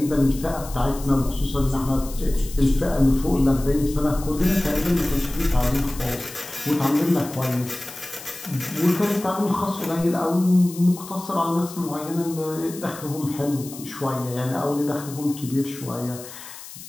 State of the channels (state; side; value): noise; left; hiss, 15 dB below the sound